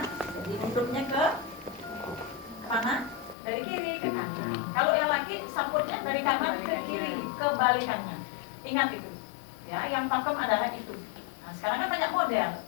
jadi nutupnya ke mana? Dari kiri ke kanan. Kalau yang laki saputnya dari kanan ke kiri, kebalikannya. Ingat itu. Ya, yang pakem adalah itu. Nah, sekarang kan banyak model,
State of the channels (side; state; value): right; drops out; at 3.4 s